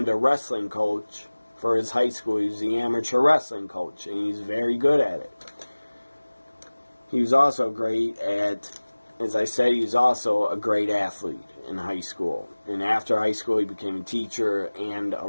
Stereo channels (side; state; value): both; inverted; correlation -1.00